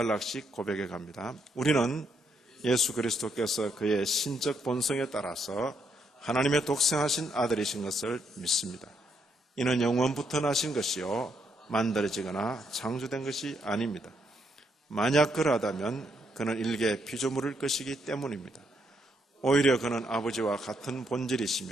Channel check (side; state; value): both; normal; correlation 0.76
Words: 고백해 갑니다. 우리는 예수 그리스도께서 그의 신적 본성에 따라서 하나님의 독생하신 아들이신 것을 믿습니다. 이는 영원부터 나신 것이요 만들어지거나 창조된 것이 아닙니다. 만약 그러하다면 그는 일개 피조물일 것이기 때문입니다. 오히려 그는 아버지와 같은